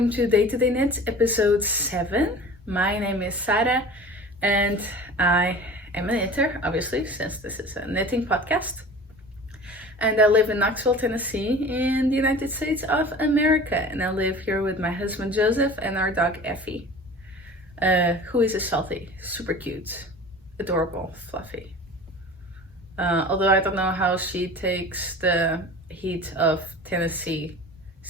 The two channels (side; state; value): both; normal; correlation 0.39